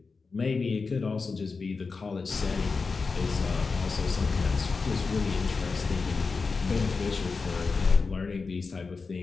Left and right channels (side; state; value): right; quieter; 4.5 dB